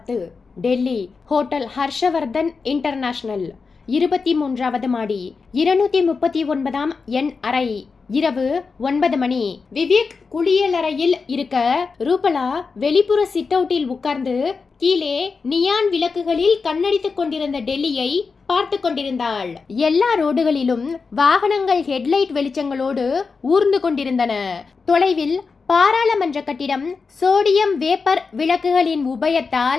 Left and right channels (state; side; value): quieter; right; 4.8 dB